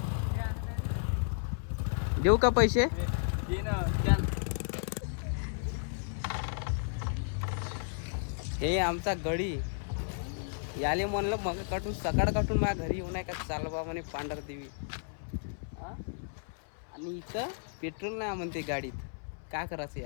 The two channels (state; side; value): silent; right; 56 dB below the other